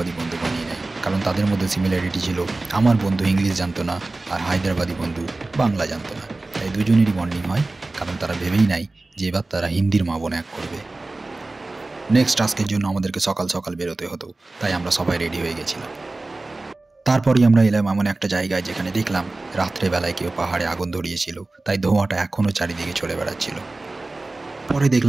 বন্ধু বানিয়ে নেয়, কারণ তাদের মধ্যে সিমিলারিটি ছিল। আমার বন্ধু ইংলিশ জানতো না আর হায়দ্রাবাদি বন্ধু বাংলা জানতো না, তাই দুজনেরই বন্ডিং হয়, কারণ তারা ভেবেই নাই যে এবার তারা হিন্দির মা বোন এক করবে। নেক্সট টাস্কের জন্য আমাদেরকে সকাল সকাল বেরোতে হতো, তাই আমরা সবাই রেডি হয়ে গেছিলাম। তারপরই আমরা এলাম এমন একটা জায়গায় যেখানে দেখলাম রাত্রেবেলায় কেউ পাহাড়ে আগুন ধরিয়েছিল, তাই ধোঁয়াটা এখনও চারিদিকে চলে বেড়াচ্ছিল। পরে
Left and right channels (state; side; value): quieter; left; 3.1 dB